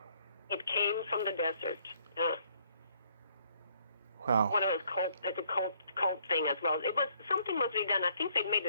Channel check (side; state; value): both; inverted; correlation -0.66